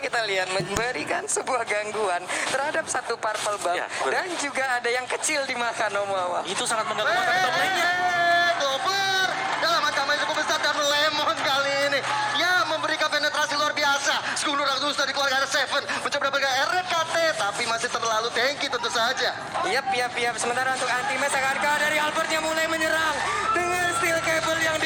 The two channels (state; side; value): identical; both; correlation 1.00